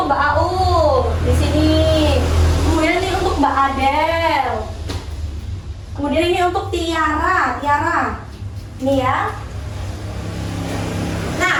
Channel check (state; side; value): identical; both; correlation 1.00